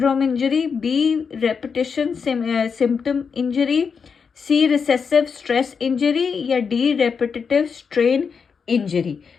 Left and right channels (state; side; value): quieter; right; 5.9 dB